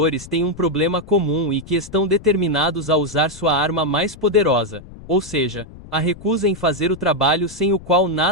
têm um problema comum e que estão determinados a usar sua arma mais poderosa, ou seja, a recusa em fazer o trabalho sem o qual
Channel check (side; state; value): left; noise; rumble, 18 dB below the sound